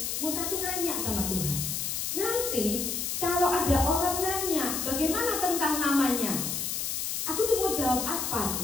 Musa tuh nanya sama Tuhan, nanti kalau ada orang nanya bagaimana tentang namanya, aku tuh mau jawab apa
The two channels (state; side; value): noise; left; hiss, 2 dB below the sound